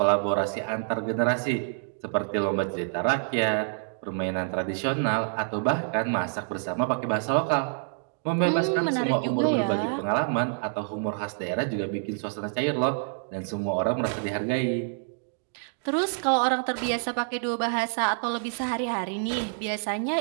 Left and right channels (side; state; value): left; silent; digital silence